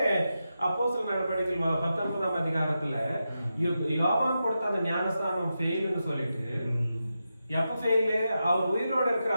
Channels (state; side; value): inverted; both; correlation -0.89